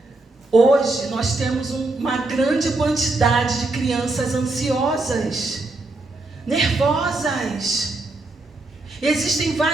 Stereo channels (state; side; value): quieter; left; 3.1 dB